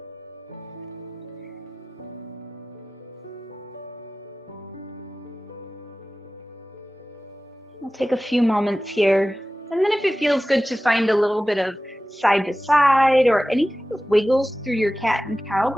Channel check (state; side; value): normal; both; correlation 0.96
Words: We'll take a few moments here. And then if it feels good to find a little bit of side to side or any kind of wiggles through your cat and cow,